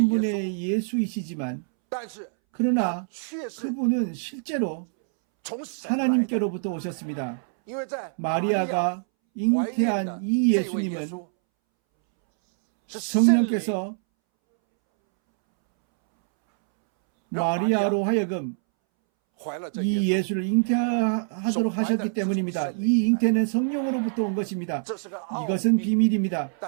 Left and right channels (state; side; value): silent; left; 62 dB below the other